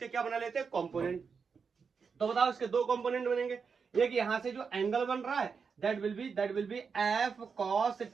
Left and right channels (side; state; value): left; quieter; 5.7 dB